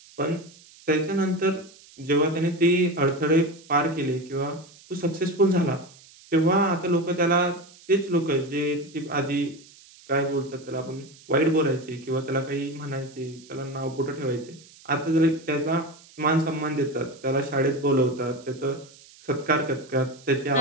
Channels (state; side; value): noise; right; hiss, 24 dB below the sound